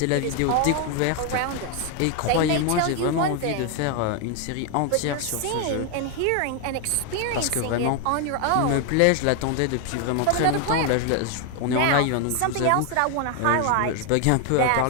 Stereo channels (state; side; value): different; both; correlation 0.01